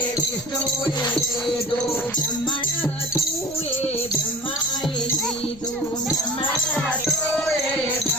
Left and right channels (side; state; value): left; noise; rumble, 20 dB below the sound